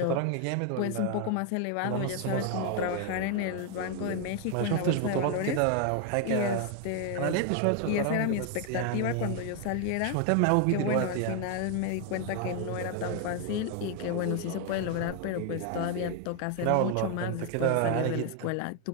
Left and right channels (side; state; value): both; different; correlation 0.01